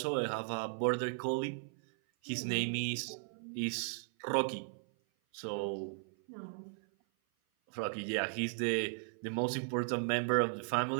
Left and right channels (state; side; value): silent; left; 53 dB below the other